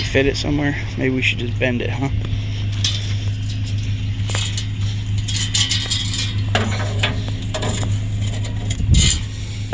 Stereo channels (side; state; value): both; identical; correlation 1.00